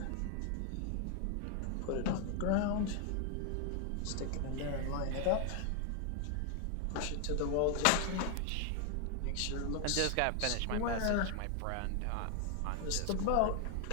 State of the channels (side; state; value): both; different; correlation 0.00